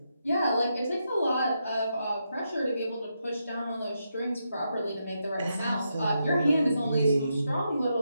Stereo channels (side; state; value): both; inverted; correlation -0.83